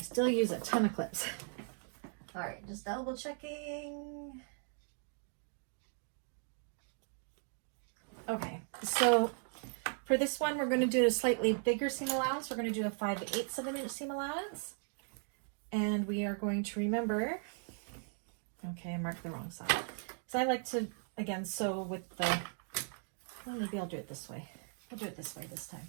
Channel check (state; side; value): silent; left; 53 dB below the other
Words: use a ton of clips. All right, just double checking. Okay, so for this one, we're going to do a slightly bigger seam allowance. We're going to do a 5/8 of an inch seam allowance. And we are going to remember, okay, I marked the wrong side. So I like to, again, sew with the, well, maybe I'll do it this way. I'll do it this way this